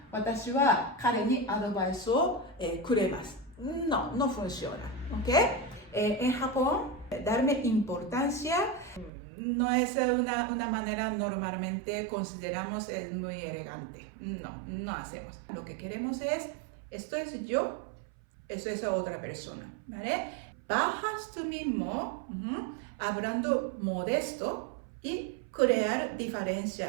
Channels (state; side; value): drops out; left; at 9.1 s